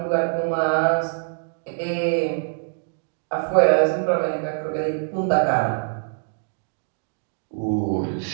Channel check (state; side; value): silent; left; digital silence